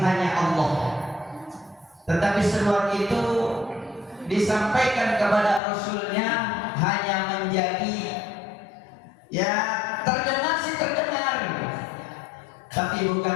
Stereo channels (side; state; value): right; drops out; at 5.6 s